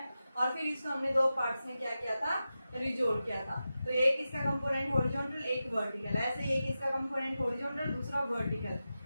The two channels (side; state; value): both; inverted; correlation -0.92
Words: और फिर इसको हमने दो पार्ट्स में क्या किया था, रिजोल्व किया था। तो एक इसका कंपोनेंट हॉरिजॉन्टल, एक वर्टिकल, ऐसे एक इसका कंपोनेंट हॉरिजॉन्टल, दूसरा वर्टिकल।